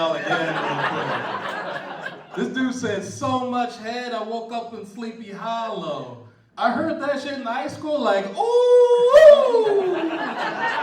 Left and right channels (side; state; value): both; identical; correlation 1.00